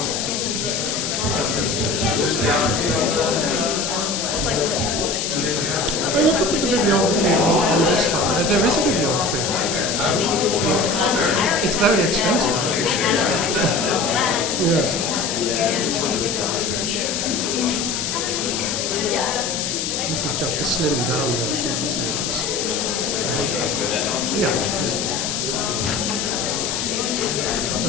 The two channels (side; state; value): left; noise; hiss, 2 dB below the sound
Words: look at the bibliography on this one. There is a bibliography. It's very expensive. Yes. This is just a slimmed down version. Yeah.